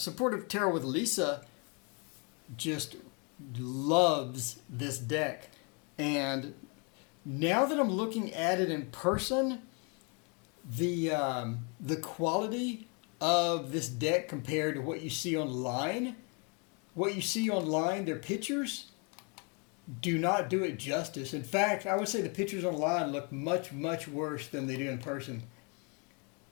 Tarot with Lisa just loves this deck. And now that I'm looking at it in person, the quality of this deck compared to what you see online, their pictures do not do it justice. In fact, I would say the pictures online look much, much worse than they do in person.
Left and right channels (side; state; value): right; quieter; 34.2 dB